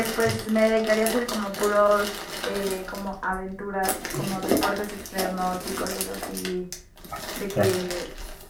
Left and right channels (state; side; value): identical; both; correlation 1.00